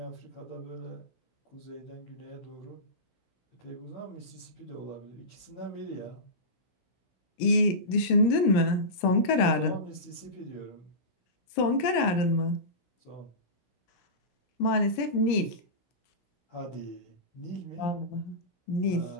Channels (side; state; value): right; late; 17 ms